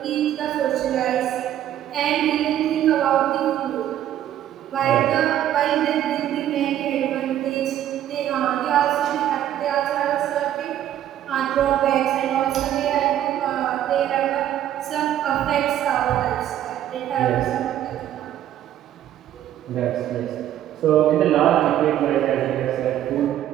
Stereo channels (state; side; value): quieter; left; 11.7 dB